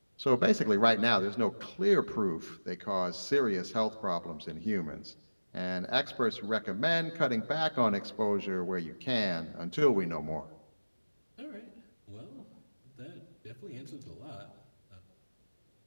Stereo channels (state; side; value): inverted; both; correlation -1.00